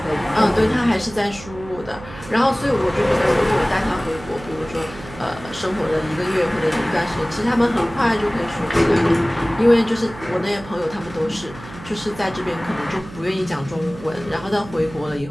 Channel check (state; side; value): noise; right; hum, 16 dB below the sound